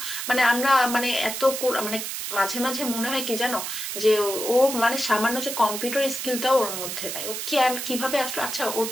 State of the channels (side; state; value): right; noise; hiss, 5 dB below the sound